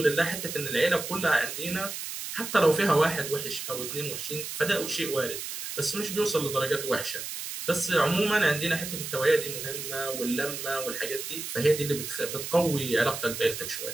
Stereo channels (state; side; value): noise; right; hiss, 7 dB below the sound